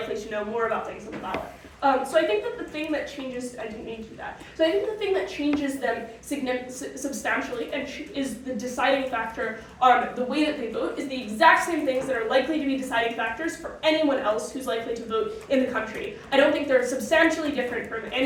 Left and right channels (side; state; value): both; identical; correlation 1.00